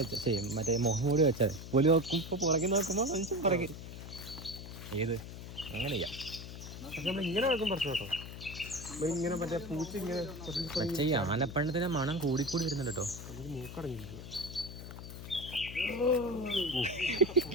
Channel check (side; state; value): left; noise; hum, 11 dB below the sound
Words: ചെയ്യും, മറ്റേ മുഖംമൂടി വെച്ചത്. പുലി നോക്കുമ്പോ പുറകിൽ നോക്കുമ്പോ മനുഷ്യൻ പുറകിൽ ഏത് അങ്ങനെ ചെയ്യാം. പക്ഷെ നമ്മൾ ഇങ്ങനെ വെക്കും പ്രശ്നം കേട്ടോ. ഇങ്ങനെ മറ്റേ പൂച്ച ഇങ്ങനെ പക്ഷേ ഈ ആനപ്പണ്ണത്തിന്റെ മണം കൂടിക്കൂടി വരുന്നുണ്ട് കേട്ടോ. എനിക്ക് മൂക്കടങ്ങിയിരിക്കുക.